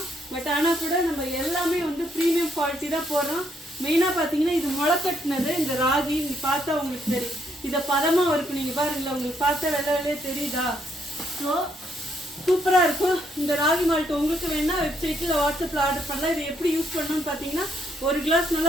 பட் ஆனால் கூட நம்ம எல்லாமே ப்ரீமியம் குவாலிட்டி தான் போடுறோம். மெயினாக பார்த்தீங்கன்னா இது முளைக்கட்டினது இந்த ராகி. நீங்கள் பார்த்தா உங்களுக்கு தெரியும் இதை பதமாக இருக்கும். நீங்கள் பாருங்களேன், உங்களுக்கு பார்த்தா வெள்ளையே தெரியுதா? ஸோ சூப்பராக இருக்கும். இந்த ராகி மால்ட் உங்களுக்கு வேணா வெப்சைட்டில் வாட்ஸ்அப்பில் ஆர்டர் பண்ணலாம். இதை எப்படி யூஸ் பண்ணணும்னு பார்த்தீங்கன்னா, ஒரு கிளாஸ்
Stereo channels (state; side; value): normal; both; correlation 0.74